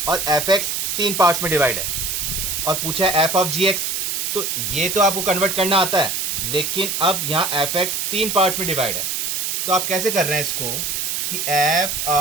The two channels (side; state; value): right; noise; hiss, 1 dB below the sound